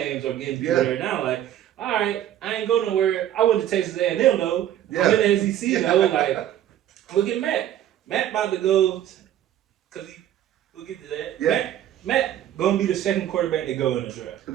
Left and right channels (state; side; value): quieter; left; 11.6 dB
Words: are getting better now. Like, all right, I ain't go nowhere. I went to Texas A&M though. I'm in the SEC though. Like, look at Matt. Matt about to go, cause we'll get to that. Yeah. Matt gonna be the second quarterback to go in the draft. He'll